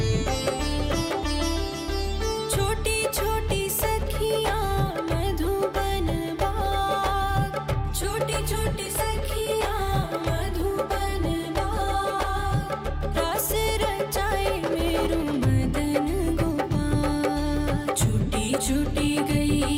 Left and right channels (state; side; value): identical; both; correlation 1.00